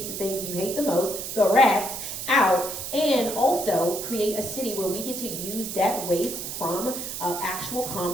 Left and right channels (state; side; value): noise; right; hiss, 6 dB below the sound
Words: the things you hate the most, the rats, out, and also create a city where we get to use that waste from actual